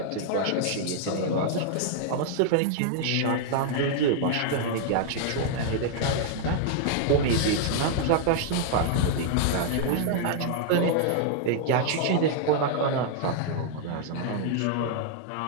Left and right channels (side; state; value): both; different; correlation -0.01